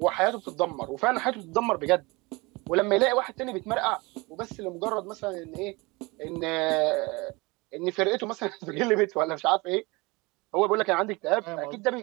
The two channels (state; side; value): quieter; left; 25.0 dB